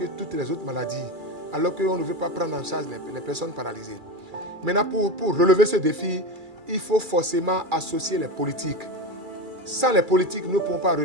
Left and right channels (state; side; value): late; left; 2.3 ms